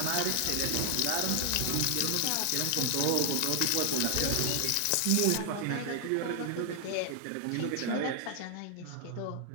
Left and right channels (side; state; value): both; different; correlation 0.00